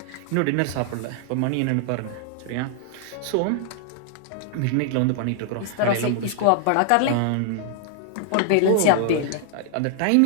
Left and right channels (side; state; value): both; different; correlation -0.01